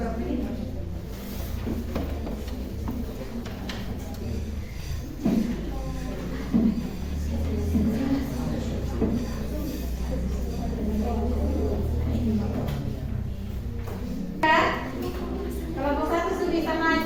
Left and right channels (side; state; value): both; identical; correlation 1.00